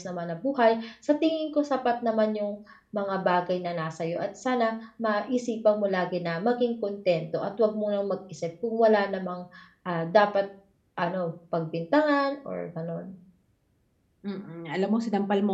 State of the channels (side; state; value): both; identical; correlation 1.00